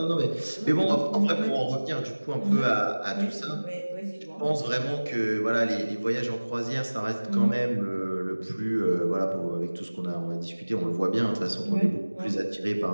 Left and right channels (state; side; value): inverted; both; correlation -1.00